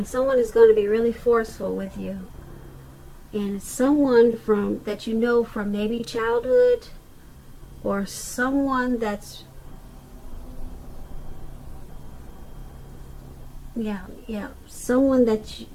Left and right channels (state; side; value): identical; both; correlation 1.00